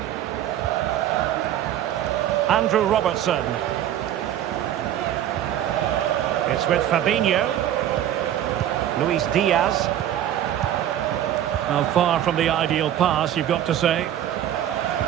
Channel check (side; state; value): left; quieter; 11.4 dB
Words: Andrew Robertson. It's with Fabinho. Luis Diaz. Well, far from the ideal pass, you've got to say.